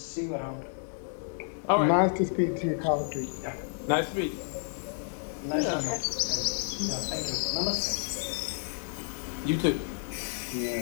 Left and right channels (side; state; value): right; silent; digital silence